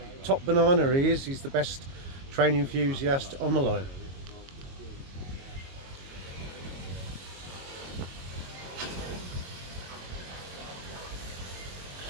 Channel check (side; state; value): left; late; 22 ms